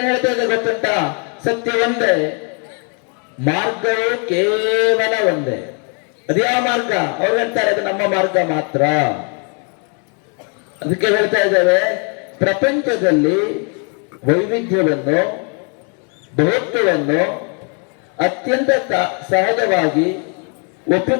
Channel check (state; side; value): quieter; right; 39.1 dB